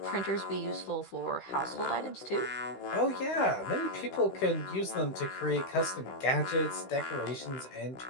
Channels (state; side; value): late; right; 16 ms